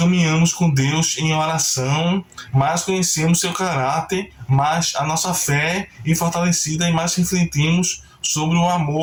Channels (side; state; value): both; identical; correlation 1.00